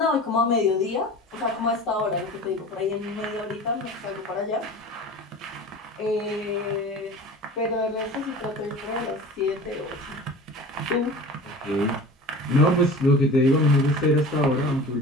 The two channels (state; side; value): normal; both; correlation 0.37